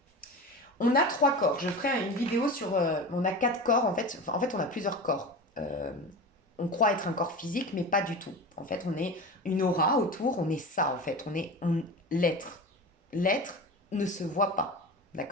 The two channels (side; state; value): both; normal; correlation 0.29